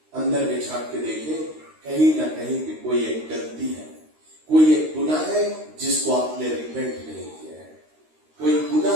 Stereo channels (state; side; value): late; left; 13 ms